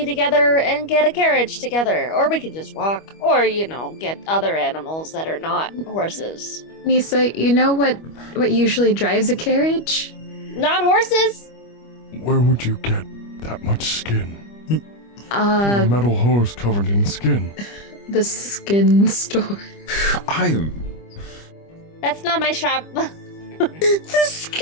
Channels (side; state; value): right; late; 25 ms